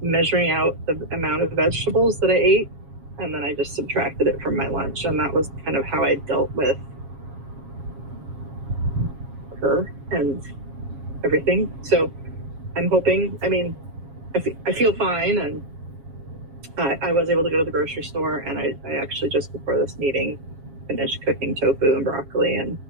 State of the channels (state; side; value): late; left; 7.3 ms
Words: measuring out the amount of vegetables that I ate, and then I just subtracted it from my lunch. And that was kind of how I dealt with her and everything. So I'm hoping, I feel fine, and I was able to go to the grocery store, and I actually just before this meeting finished cooking tofu and broccoli and